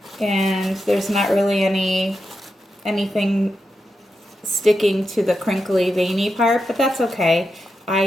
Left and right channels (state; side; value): normal; both; correlation 0.87